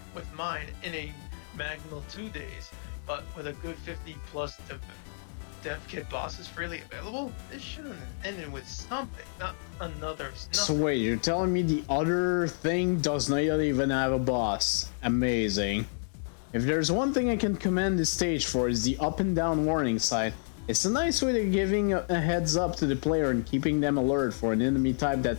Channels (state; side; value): silent; right; digital silence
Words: with mine in a Magmal 2 days, but with a good 50+ dev kit bosses freely available, this should have ended with something, not another. So wait, you're telling me the other thing does not even have a boss? Amazing. If there's one thing I can commend this stage for, is the up and down warning sign. It's a nice way of giving a heads up to the player and keeping them alert for an enemy type